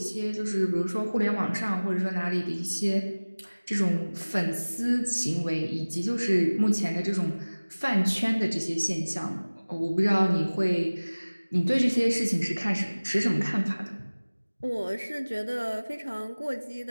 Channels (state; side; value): inverted; both; correlation -1.00